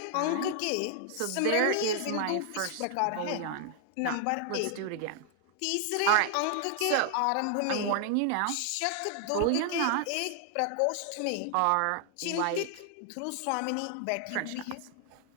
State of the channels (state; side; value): different; both; correlation 0.00